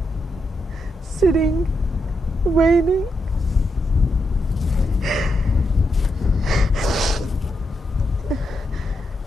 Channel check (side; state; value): both; normal; correlation 0.83